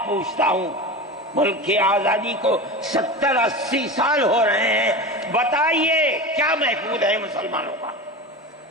پوچھتا ہوں، ملک کی آزادی کو 70-80 سال ہو رہے ہیں، بتائیے کیا محفوظ ہے مسلمانوں کا؟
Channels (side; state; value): both; normal; correlation 0.27